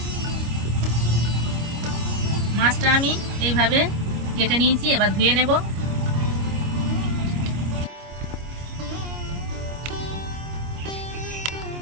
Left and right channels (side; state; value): left; late; 25 ms